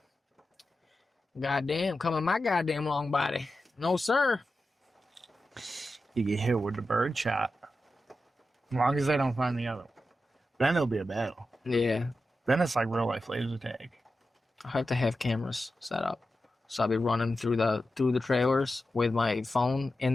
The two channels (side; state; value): both; normal; correlation 0.91